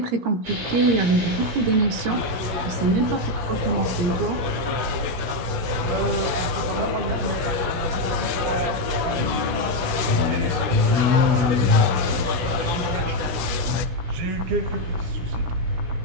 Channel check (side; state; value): left; late; 16 ms